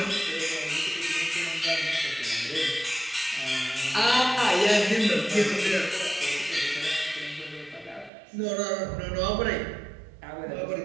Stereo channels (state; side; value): drops out; left; at 8.1 s